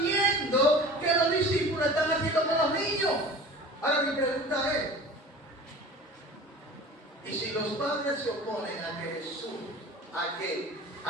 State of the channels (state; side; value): normal; both; correlation 0.40